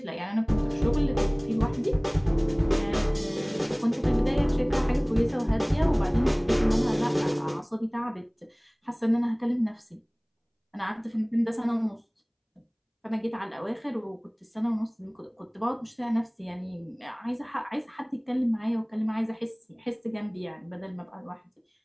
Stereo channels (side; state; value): both; identical; correlation 1.00